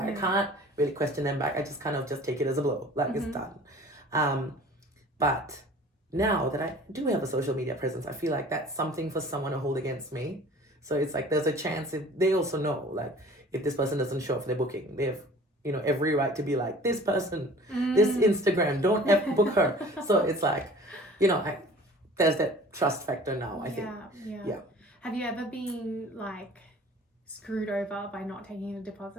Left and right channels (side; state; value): both; normal; correlation 0.47